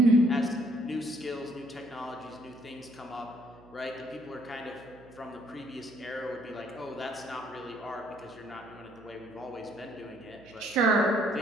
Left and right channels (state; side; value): noise; right; hum, 22 dB below the sound